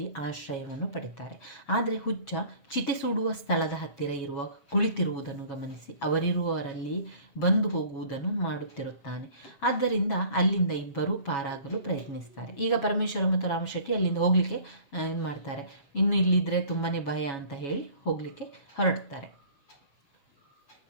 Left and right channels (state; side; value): late; right; 7.2 ms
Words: ಆಶ್ರಯವನ್ನು ಪಡೆಯುತ್ತಾರೆ. ಆದರೆ ಹುಚ್ಚ ಚಿತೆ ಸುಡುವ ಸ್ಥಳದ ಹತ್ತಿರ ಕುಳಿತಿರುವುದನ್ನು ಗಮನಿಸಿ ಅವರಿರುವವರಲ್ಲಿ ಬಂದು ಹೋಗುವುದನ್ನು ಮಾಡುತ್ತಿರುತ್ತಾನೆ. ಆದ್ದರಿಂದ ಅಲ್ಲಿಂದ ಇಬ್ಬರೂ ಪಾರಾಗಲು ಪ್ರಯತ್ನಿಸ್ತಾರೆ. ಈಗ ಪರಮೇಶ್ವರ ಮತ್ತು ರಾಮಶೆಟ್ಟಿ ಅಲ್ಲಿಂದ ಹೋಗ್ಲಿಕ್ಕೆ ಏನು ಮಾಡ್ತಾರೆ, ಇನ್ನು ಇಲ್ಲಿದ್ರೆ ತುಂಬಾನೇ ಭಯ ಅಂತ ಹೇಳಿ ಹೋಗ್ಲಿಕ್ಕೆ ಹೊರಡ್ತಾರೆ.